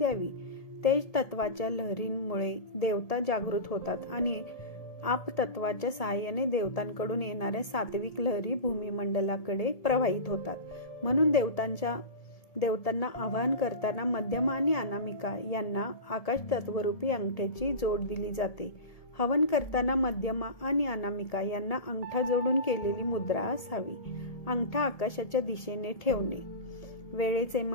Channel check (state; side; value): late; right; 1.7 ms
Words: तेज तत्वाच्या लहरींमुळे देवता जागृत होतात आणि आप तत्वाच्या सहाय्याने देवतांकडून येणाऱ्या सात्विक लहरी भूमिमंडलाकडे प्रवाहित होतात. म्हणून देवतांना आवाहन करताना मध्यमा आणि अनामिका यांना आकाश तत्वरूपी अंगठ्याची जोड दिली जाते. हवन करताना मध्यमा आणि अनामिका यांना अंगठा जोडून केलेली मुद्रा असावी. अंगठा आकाशाच्या दिशेने ठेवणे. वेळेचे